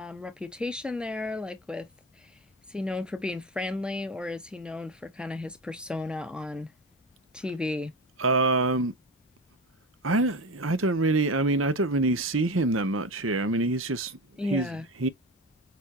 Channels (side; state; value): both; normal; correlation 0.25